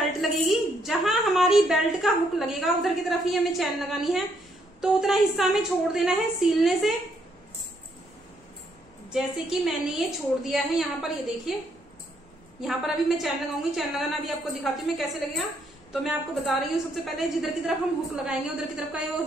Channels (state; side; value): noise; left; rumble, 29 dB below the sound